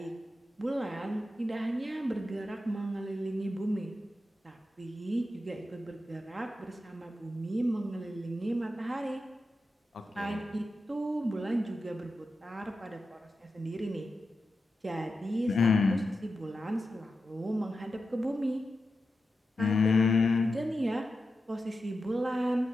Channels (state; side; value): normal; both; correlation 0.90